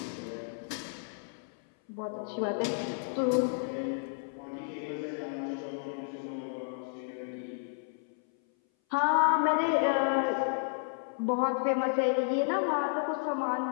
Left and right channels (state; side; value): silent; right; 57 dB below the other